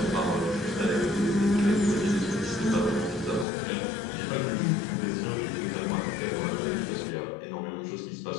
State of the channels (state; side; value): drops out; right; at 3.5 s